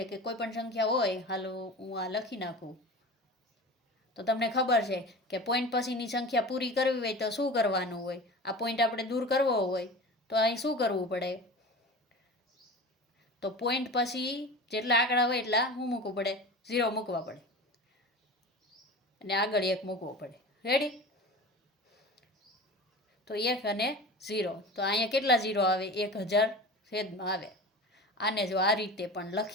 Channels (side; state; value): both; normal; correlation 0.34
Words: કે કોઈ પણ સંખ્યા હોય, હાલો હું આ લખી નાખું તો તમને ખબર છે કે પોઈન્ટ પછીની સંખ્યા પૂરી કરવી હોય તો શું કરવાનું હોય? આ પોઈન્ટ આપણે દૂર કરવો હોય તો અહીં શું કરવું પડે? તો પોઈન્ટ પછી જેટલા આંકડા હોય એટલા શું મૂકવું પડે? 0 મૂકવા પડે અને આગળ 1 મૂકવો પડે. રેડી? તો 1 અને 0, તો અહીંયા કેટલા 0 આવે? 1000 છેદમાં આવે. આને જો આ રીતે પણ